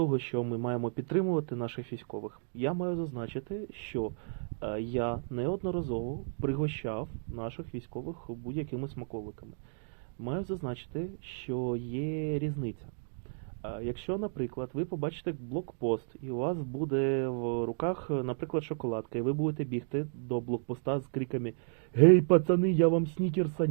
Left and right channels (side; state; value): left; silent; digital silence